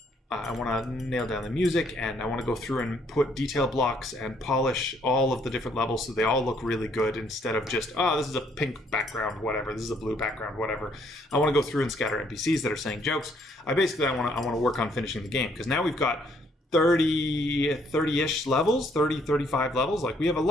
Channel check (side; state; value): both; normal; correlation 0.67